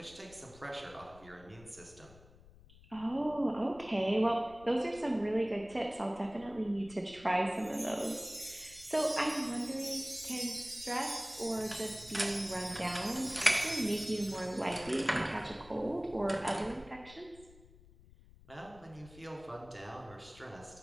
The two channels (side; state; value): left; noise; rumble, 22 dB below the sound